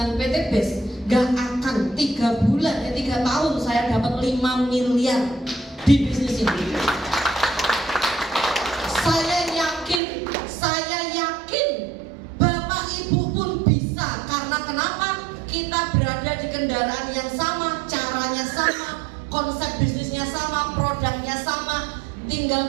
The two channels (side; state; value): left; drops out; at 10.0 s